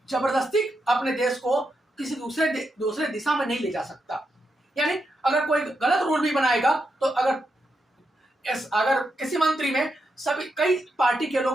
जबरदस्ती अपने देश को किसी दूसरे दिशा में नहीं ले जा सकता। यानी अगर कोई गलत रूल भी बनाएगा तो अगर किसी मंत्री में कई पार्टी के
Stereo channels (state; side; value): normal; both; correlation 0.84